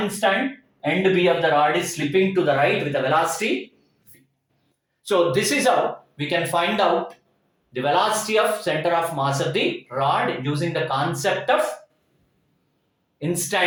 instant end B of the rod is slipping to the right with a velocity v. So this is how we can find out the velocity of center of mass of the rod using the concept of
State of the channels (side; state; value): both; identical; correlation 1.00